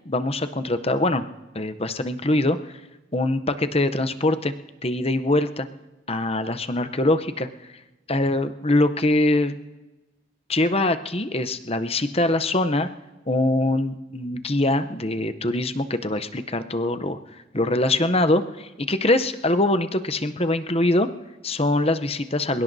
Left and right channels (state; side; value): normal; both; correlation 0.55